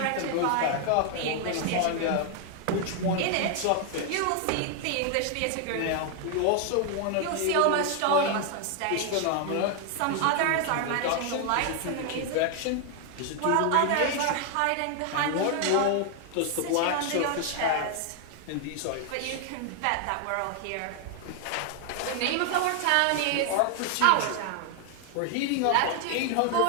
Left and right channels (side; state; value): both; different; correlation 0.00